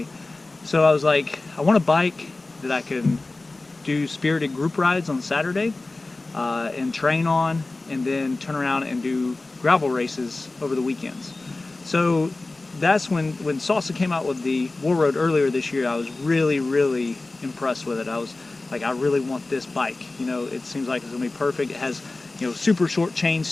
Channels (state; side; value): quieter; right; 3.2 dB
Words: So I was like, I want a bike that I can do spirited group rides on Saturday and train on, and then turn around and do gravel races over the weekends. So that's when Salsa came out with the Warroad earlier this year. I was really impressed with it. I was like, I really want this bike. You know, it seems like it's gonna be perfect. It has, super short chain